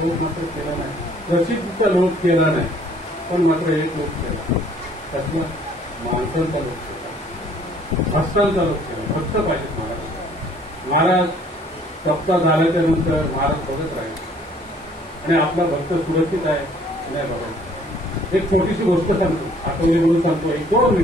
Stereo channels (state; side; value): normal; both; correlation 0.58